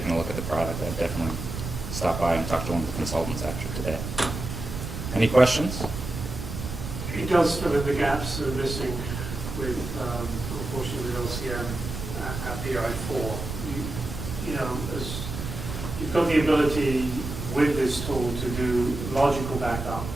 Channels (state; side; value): noise; right; rumble, 6 dB below the sound